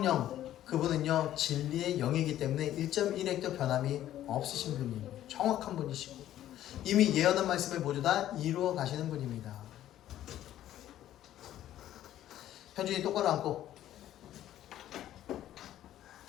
그분은요 진리의 영이기 때문에 1.1핵도 변함이 없으신 분이에요. 정확한 분이시고 이미 예언한 말씀을 모두 다 이루어 가시는 분입니다. 현준이 똑바로 앉고.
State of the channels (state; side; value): quieter; right; 12.6 dB